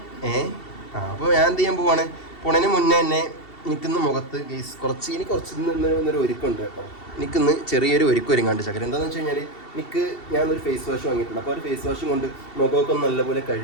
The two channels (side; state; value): right; late; 2.7 ms